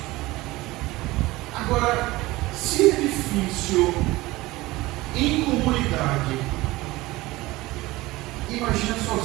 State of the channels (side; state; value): left; quieter; 19.6 dB